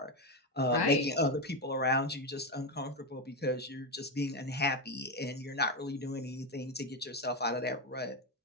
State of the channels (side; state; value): both; normal; correlation 0.11